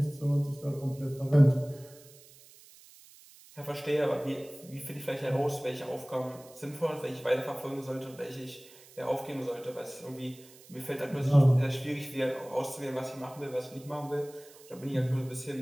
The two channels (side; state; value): right; noise; hiss, 22 dB below the sound